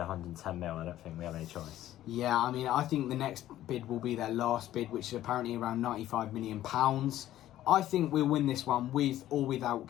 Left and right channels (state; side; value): quieter; right; 13.4 dB